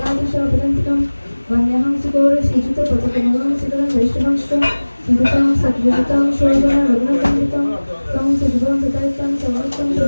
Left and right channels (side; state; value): both; inverted; correlation -1.00